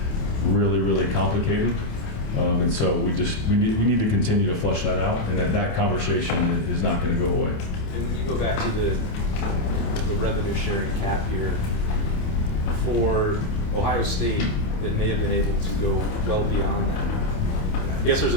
really, really complicated. And so we need to continue to flush that out, and that conversation is not going to go away. And when you go back to the revenue sharing cap here, for Ohio State that may have been able to go well beyond that, I guess there's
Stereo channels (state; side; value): late; right; 28 ms